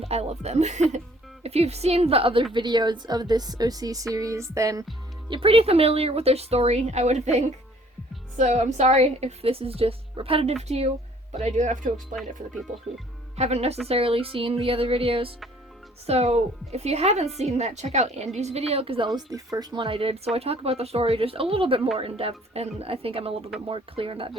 I love them. If you've seen the other videos of this OC series, then you're pretty familiar with their story, I would think. So I'm sorry if this is just repetitive to you, but I do have to explain it for the people who haven't necessarily seen the other videos. So if you haven't seen that, check out Andy's video, because that was the first one I did. So I talk about the story just a little bit more in depth, and I think I'm a little bit more clear in that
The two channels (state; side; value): normal; both; correlation 0.57